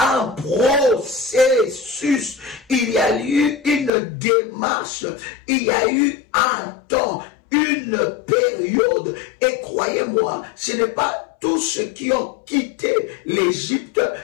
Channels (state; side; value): drops out; right; at 3.9 s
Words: processus, il y a eu une démarche, il y a eu un temps, une période. Et croyez-moi, ce n'est pas tous ceux qui ont quitté l'Égypte,